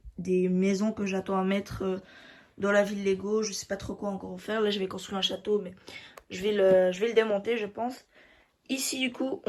maisons que j'attends à mettre dans la ville Lego. Je sais pas trop quoi encore faire. Là, je vais construire un château, mais je vais le démonter, je pense. Ici, du coup,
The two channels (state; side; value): identical; both; correlation 1.00